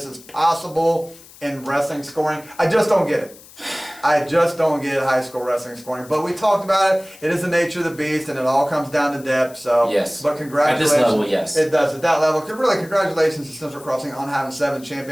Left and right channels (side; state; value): left; noise; hiss, 22 dB below the sound